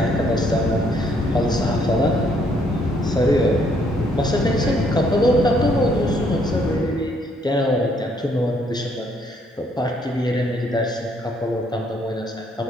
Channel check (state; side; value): normal; both; correlation 0.68